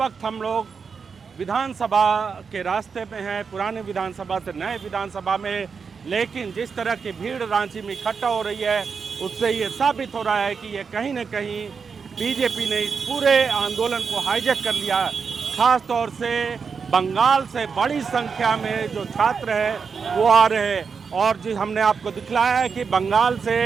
हम लोग विधानसभा के रास्ते में हैं, पुराने विधानसभा से नए विधानसभा में। लेकिन जिस तरह की भीड़ रांची में इकट्ठा हो रही है, उससे ये साबित हो रहा है कि ये कहीं न कहीं बीजेपी ने इस पूरे आंदोलन को हाईजैक कर लिया। खास तौर से बंगाल से बड़ी संख्या में जो छात्र हैं वो आ रहे हैं। और जी हमने आपको दिखलाया है कि बंगाल से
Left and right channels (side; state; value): left; quieter; 5.7 dB